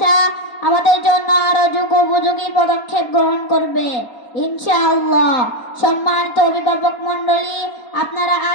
আমাদের জন্য আরো যুগোপযোগী পদক্ষেপ গ্রহণ করবে ইনশাআল্লাহ। সম্মানিত অভিভাবক মণ্ডলী, আপনারা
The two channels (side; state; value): right; late; 4.3 ms